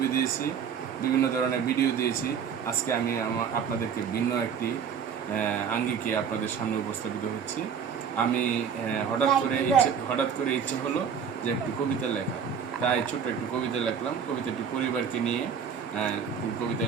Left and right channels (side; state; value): left; quieter; 7.2 dB